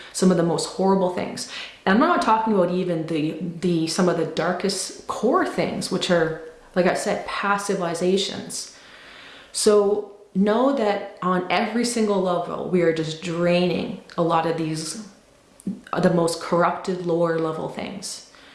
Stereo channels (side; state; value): both; identical; correlation 1.00